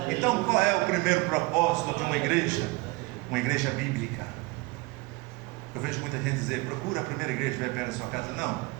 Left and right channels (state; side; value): quieter; left; 23.7 dB